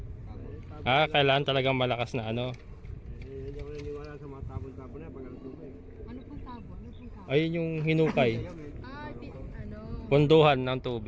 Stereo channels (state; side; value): identical; both; correlation 1.00